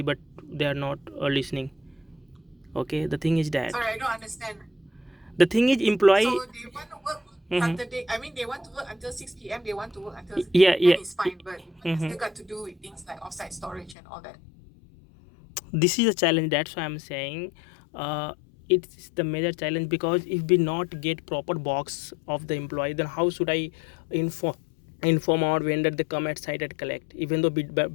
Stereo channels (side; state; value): right; drops out; at 14.0 s